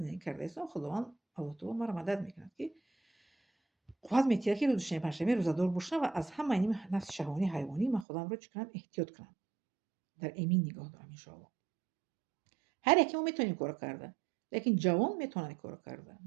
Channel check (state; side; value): drops out; left; at 8.1 s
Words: карда истам. Худованд Аллоҳ таоло маро мадад мекунад ки қувват метиҳад ки рӯзи шанбе панҷшанбе рӯзадор бошам ва аз ҳама ин нафси шаҳвонӣ ҳайвонӣ ман худамро чӣ кунам? Эҳтиёт кунам. Дар эмин нигоҳ дорам иншоаллоҳ. ҳар яке мо метавонем ин корро карда, лекин ҷавон метавонад ин корро карда.